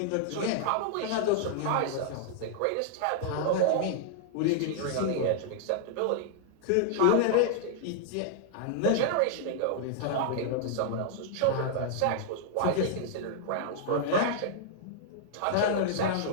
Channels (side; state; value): both; different; correlation -0.01